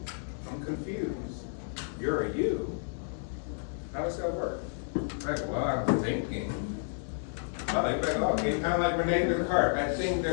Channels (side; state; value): right; silent; 57 dB below the other